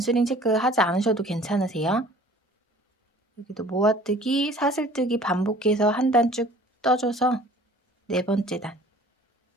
체크하지 않으셔도 괜찮으세요. 여기도 모아뜨기, 사슬뜨기 반복해서 한 단 쭉 떠줘서 네 번째 단.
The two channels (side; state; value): both; normal; correlation 0.49